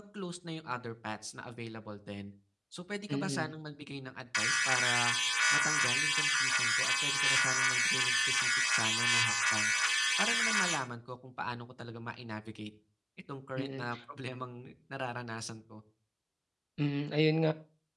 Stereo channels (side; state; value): both; identical; correlation 1.00